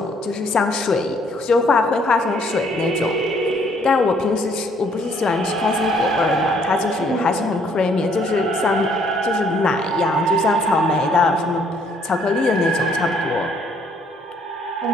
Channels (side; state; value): both; normal; correlation 0.64